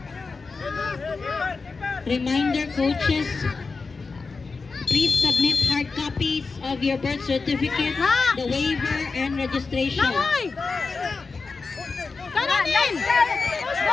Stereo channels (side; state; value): right; quieter; 4.4 dB